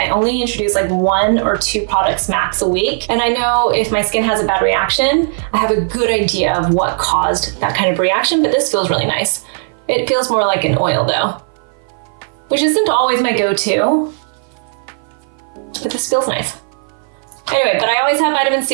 only introduce like 1 or 2 products max a week. And I know if my skin has a bad reaction, I have a good idea of what caused that kind of reaction, but this feels really nice. It feels more like an oil though, which isn't always my go-to, but this feels nice. Anyway, but I always have vitamin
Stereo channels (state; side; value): silent; left; 57 dB below the other